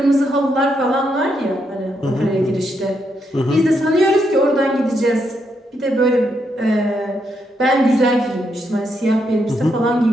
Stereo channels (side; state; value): both; normal; correlation 0.79